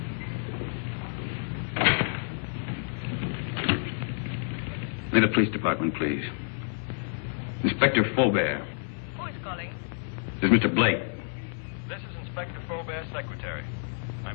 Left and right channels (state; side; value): silent; right; 58 dB below the other